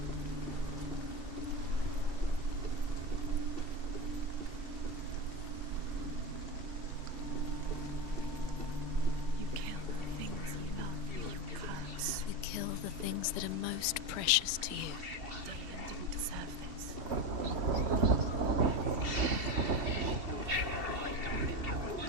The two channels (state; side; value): late; left; 2.7 ms